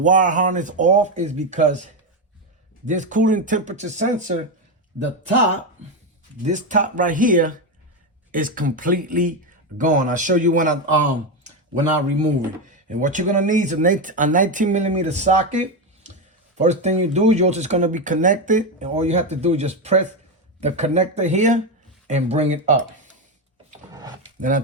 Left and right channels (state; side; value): normal; both; correlation 0.11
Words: harness off is because this cooling temperature sensor, this top right here is completely gone. I'll show you when I remove it. And what you're gonna need is a 19mm socket. First thing you do, you're just gonna be connected, and all you have to do is just press the connector here and bring it up. Then I